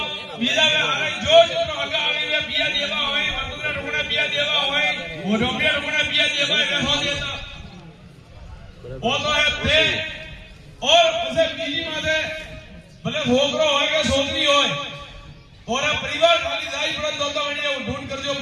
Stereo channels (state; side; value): identical; both; correlation 1.00